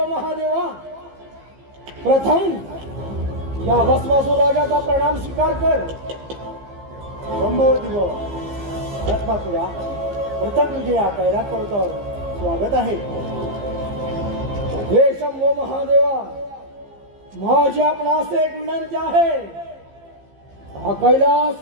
महादेवा, प्रथम या भस्मासूर राजाचा प्रणाम स्वीकार कर. संभवती भस्मासुरा, प्रथम तुझे या कैरात पर्वतावर स्वागत आहे. हे शंभो महादेवा, माझी आपणास एक विनंती आहे. हा कैलास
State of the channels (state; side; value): late; left; 15 ms